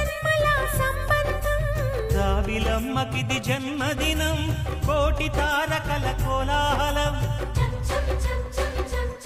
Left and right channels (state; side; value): identical; both; correlation 1.00